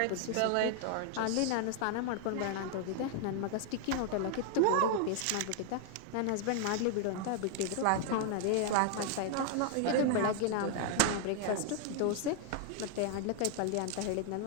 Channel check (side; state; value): both; different; correlation 0.00